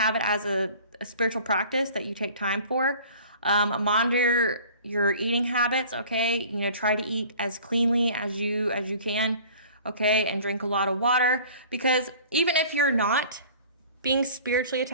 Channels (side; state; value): both; inverted; correlation -0.47